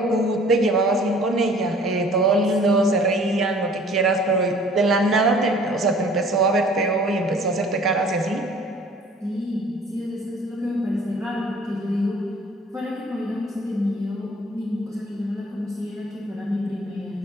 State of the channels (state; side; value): normal; both; correlation 0.52